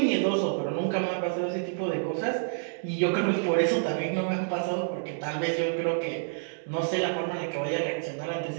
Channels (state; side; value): silent; left; digital silence